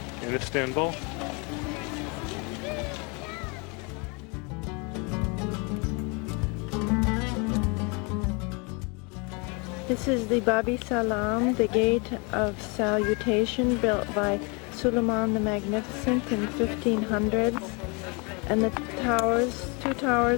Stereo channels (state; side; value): quieter; right; 31.2 dB